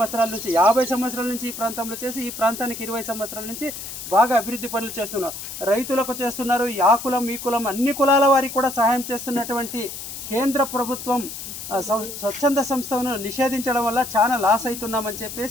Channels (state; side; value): noise; left; hiss, 9 dB below the sound